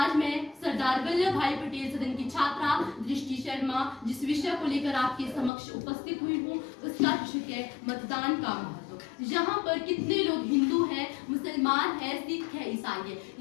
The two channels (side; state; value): right; drops out; at 5.5 s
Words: मैं सरदार वल्लभ भाई पटेल सदन की छात्रा दृष्टि शर्मा जिस विषय को लेकर आपके समक्ष उपस्थित हुई हूँ, उसका विषय है मतदान का महत्व। यहाँ पर कितने लोग हिंदू हैं, मुसलमान है, सिख है, ईसाई है,